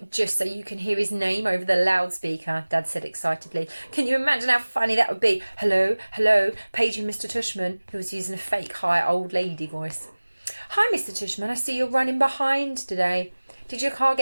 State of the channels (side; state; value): both; inverted; correlation -1.00